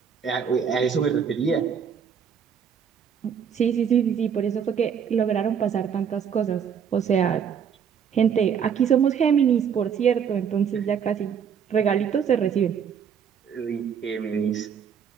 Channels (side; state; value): left; quieter; 7.5 dB